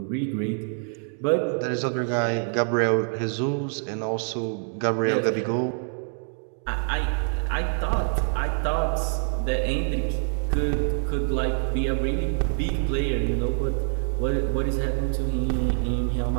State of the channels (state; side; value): silent; left; 60 dB below the other